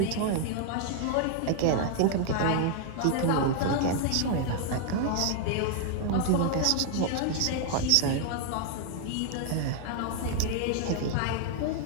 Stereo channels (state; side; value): different; both; correlation 0.00